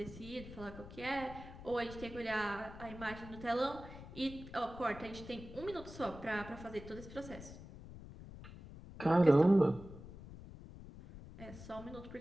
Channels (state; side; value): noise; left; rumble, 14 dB below the sound